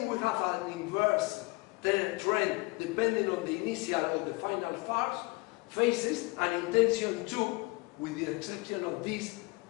we have an inverse trend depending on the initial or the final phases, and in tension 2, with the exception of this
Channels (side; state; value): right; quieter; 24.8 dB